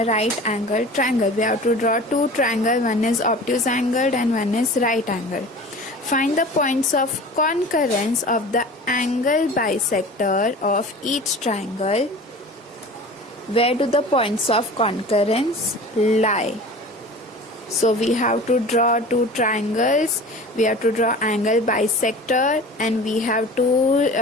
right angle triangle. We have to draw two triangles, one is obtuse angled and one is right angled. Find the points of concurrence of the angle bisector of each triangle. Where do the points of concurrence lie? So we have to draw two triangles, we have to draw angle bisector, and we have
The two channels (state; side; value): normal; both; correlation 0.39